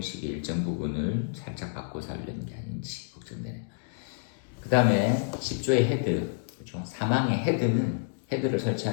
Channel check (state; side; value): silent; right; digital silence